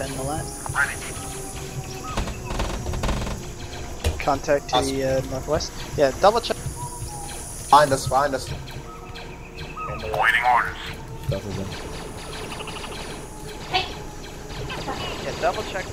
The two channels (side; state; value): both; identical; correlation 1.00